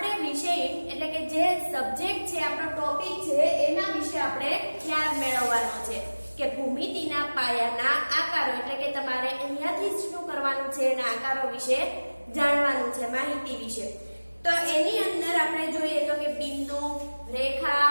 વિષય એટલે કે જે સબ્જેક્ટ છે, આપણો ટોપિક છે, એના વિશે આપણે ખ્યાલ મેળવવાનો છે કે ભૂમિતિના પાયાના આકારો. એટલે કે તમારે અહીંયાથી શું કરવાનું છે, એના આકારો વિશે જાણવાનું છે, માહિતી વિશે. તો એની અંદર આપણે જોઈએ તો કે બિંદુ, રેખા,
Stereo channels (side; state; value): both; inverted; correlation -1.00